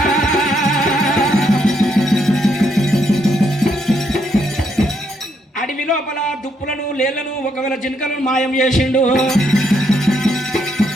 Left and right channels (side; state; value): both; normal; correlation 0.75